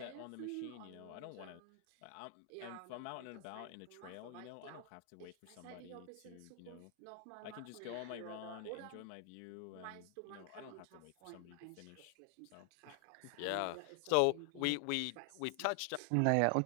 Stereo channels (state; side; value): different; both; correlation 0.00